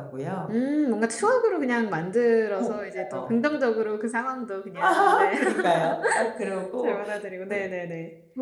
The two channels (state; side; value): identical; both; correlation 1.00